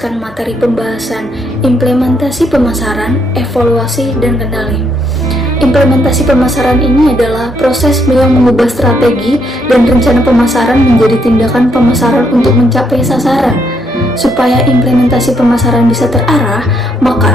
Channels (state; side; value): normal; both; correlation 0.73